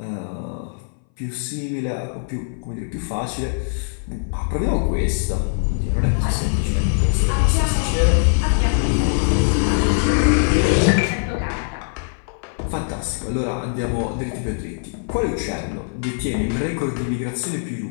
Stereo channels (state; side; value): silent; right; 61 dB below the other